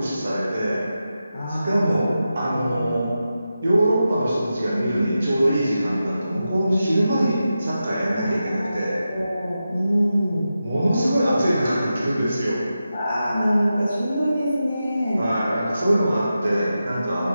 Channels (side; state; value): both; inverted; correlation -0.91